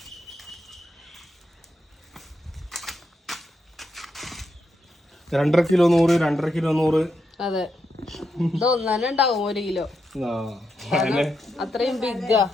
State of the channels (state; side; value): normal; both; correlation 0.83